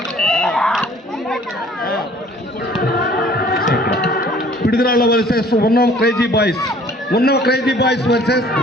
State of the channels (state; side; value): normal; both; correlation 0.53